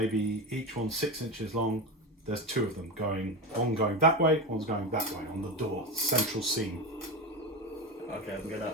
each one 6 inches long. There's 2 of them one going that way, one's going that way on the door, central seam. Okay, I'm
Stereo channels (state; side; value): normal; both; correlation 0.19